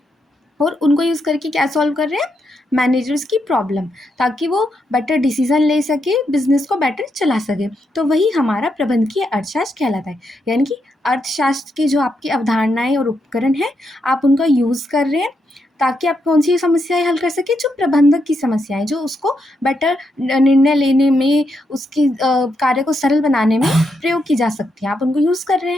और उनको यूज़ करके क्या सॉल्व कर रहे हैं, मैनेजर्स की प्रॉब्लम, ताकि वो बेटर डिसीजन ले सके, बिजनेस को बेटर चला सके। तो वही हमारा प्रबंधकीय अर्थशास्त्र कहलाता है। यानी कि अर्थशास्त्र की जो आपकी अवधारणाएं और उपकरण हैं, आप उनका यूज़ कर रहे हैं ताकि आप कौन सी समस्याएं हल कर सके, जो प्रबंधक की समस्याएं, जो उसको बेटर निर्णय लेने में, उसकी कार्य को सरल बनाने में प्रयोग की जा सकती है, आप उनको यूज़ कर रहे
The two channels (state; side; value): normal; both; correlation 0.81